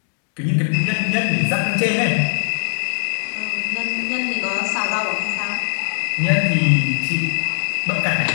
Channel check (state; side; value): silent; right; digital silence